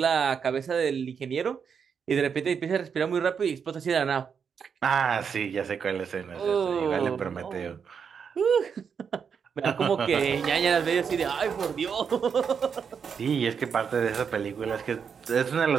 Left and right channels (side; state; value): left; quieter; 6.7 dB